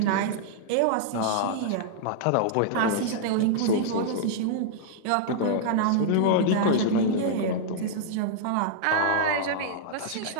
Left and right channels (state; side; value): different; both; correlation -0.02